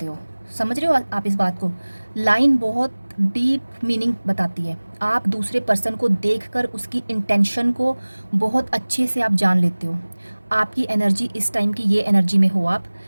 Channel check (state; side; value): inverted; both; correlation -1.00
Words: हो। समझ रहे हो आप इस बात को। लाइन बहुत डीप मीनिंग बताती है। आप दूसरे पर्सन को देखकर उसकी इंटेंशन को बहुत अच्छे से आप जान लेते हो। आपकी एनर्जी इस टाइम की ये एनर्जी में हो आप।